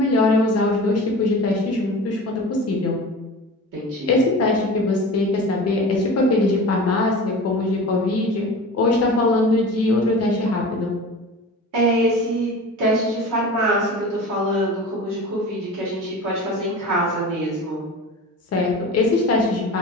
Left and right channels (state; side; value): normal; both; correlation 0.35